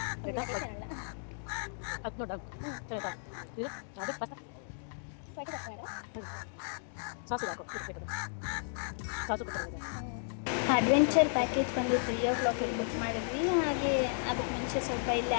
ಅಡ್ವೆಂಚರ್ ಪ್ಯಾಕೇಜ್ ಬಂದು 3 o'clock ಬುಕ್ ಮಾಡಿದ್ವಿ. ಹಾಗೆ ಅದಕ್ಕೆ ಮುಂಚೆ ಸ್ವಲ್ಪ ಇಲ್ಲಿ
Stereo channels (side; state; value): right; silent; digital silence